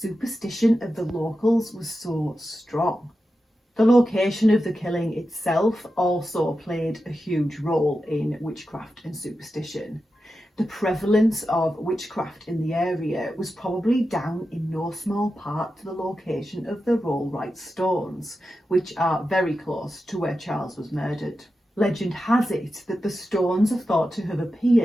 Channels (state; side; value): normal; both; correlation 0.91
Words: of the locals was so strong. The location of the killing itself also played a huge role in witchcraft and superstition. The prevalence of witchcraft in the area was probably down in no small part to the location of the Rollright stones, which are very close to where Charles was murdered. Legend has it that the stones are thought to have